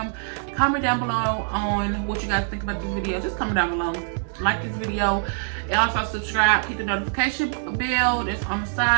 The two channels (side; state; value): left; silent; 62 dB below the other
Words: Comment down below on what you guys think about this video. Just comment down below. Like this video, and also subscribe. Hit the notification bell that's on the